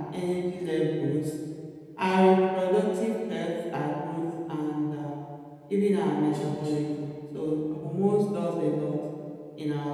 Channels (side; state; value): both; identical; correlation 1.00